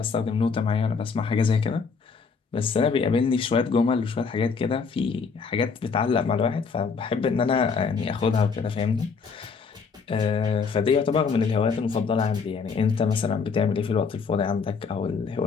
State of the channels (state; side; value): quieter; right; 5.3 dB